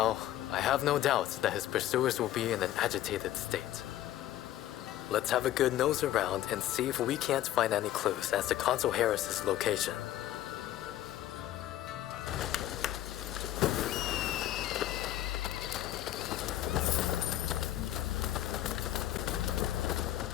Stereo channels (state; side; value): quieter; right; 13.2 dB